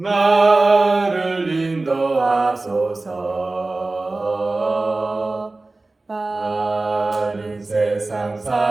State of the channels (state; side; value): quieter; left; 3.2 dB